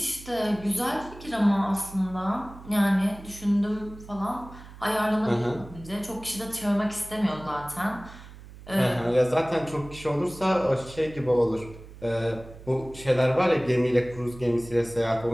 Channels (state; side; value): noise; right; hum, 17 dB below the sound